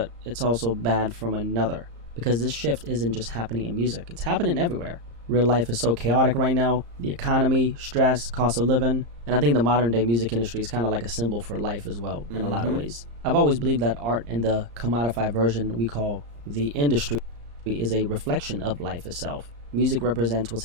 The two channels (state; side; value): late; left; 34 ms